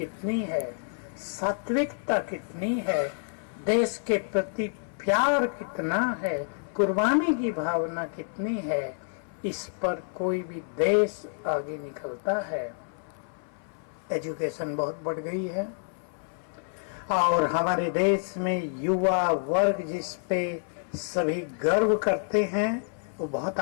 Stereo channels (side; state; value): right; silent; 59 dB below the other